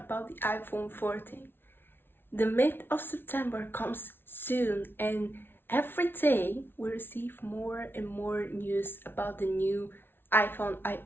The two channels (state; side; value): late; right; 0.11 ms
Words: the iPhone 14. The mid of September comes soon, and every day we receive more and more news about the new iPhone. I